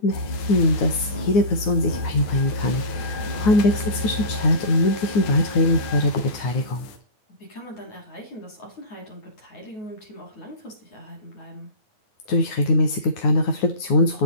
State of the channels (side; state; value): right; late; 9.5 ms